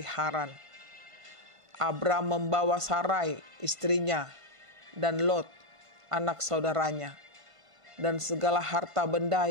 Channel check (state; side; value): late; left; 1.5 ms